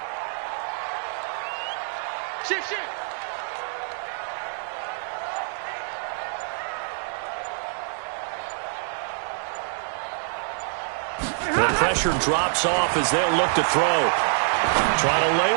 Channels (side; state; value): left; silent; digital silence